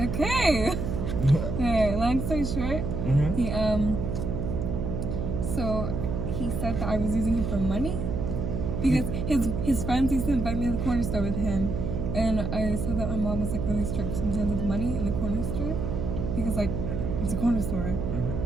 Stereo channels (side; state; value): right; noise; hum, 2 dB below the sound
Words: Okay, long story short, Mm-hmm. so he said that I was using him for money because his friends used to invite me to the corner store with him, and I saw that my mom was like really strict sometimes with money in the corner store because like it's a corner store,